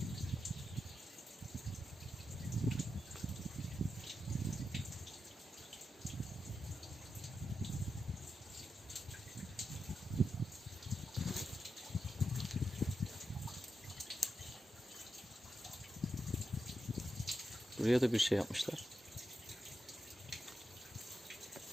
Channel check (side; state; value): both; normal; correlation 0.88